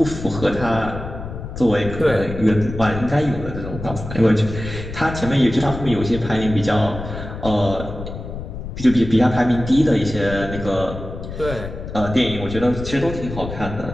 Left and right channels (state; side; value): noise; left; rumble, 9 dB below the sound